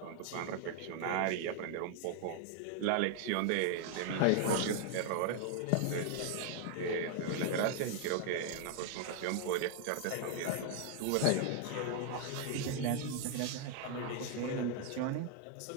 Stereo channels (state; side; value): different; both; correlation 0.00